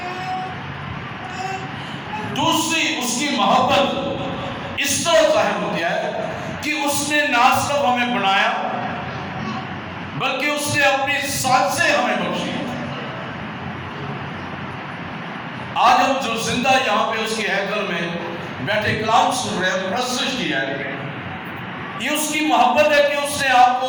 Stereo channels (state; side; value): identical; both; correlation 1.00